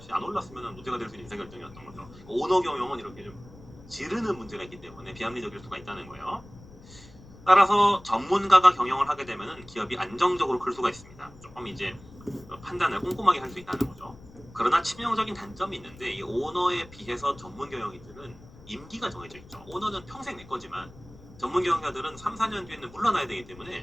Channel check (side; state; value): left; noise; rumble, 20 dB below the sound